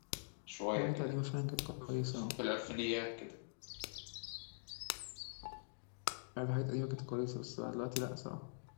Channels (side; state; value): right; silent; digital silence